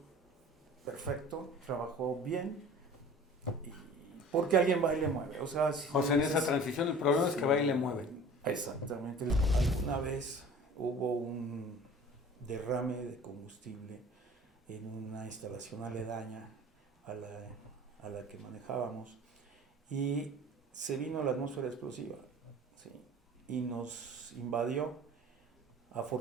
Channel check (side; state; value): both; normal; correlation 0.43